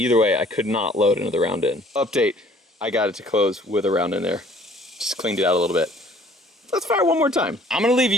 way, I could not load another round in. Update, I got it to close with a round in there. Just cleaned it out a little bit. Let's fire one more time. I'm gonna leave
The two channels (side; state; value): both; normal; correlation 0.55